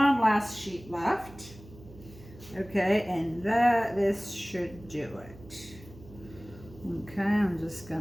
last sheet left. Okay, and this should do it. Okay, I'm just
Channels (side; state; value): right; noise; hum, 19 dB below the sound